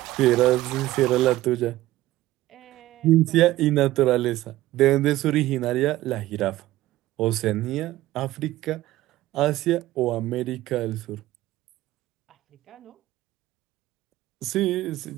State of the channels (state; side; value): quieter; left; 16.1 dB